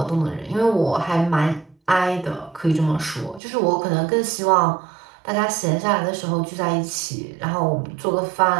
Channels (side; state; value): left; drops out; at 3.4 s